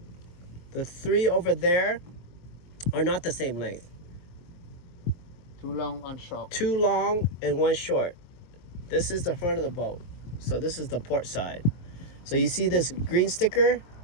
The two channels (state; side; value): late; right; 23 ms